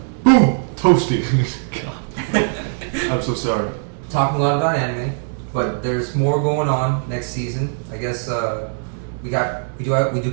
Boom. Toasty. I'm so sorry. Talking a lot about anime, but there's more going on next season. I guess we do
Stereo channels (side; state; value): left; silent; digital silence